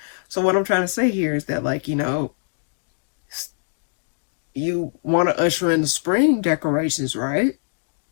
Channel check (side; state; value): right; silent; digital silence